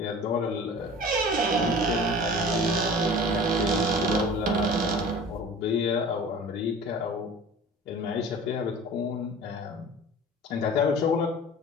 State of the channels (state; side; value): normal; both; correlation 0.41